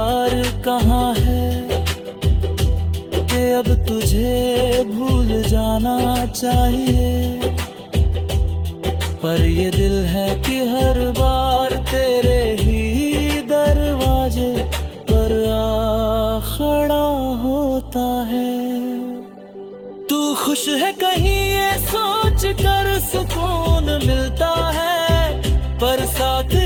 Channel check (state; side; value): identical; both; correlation 1.00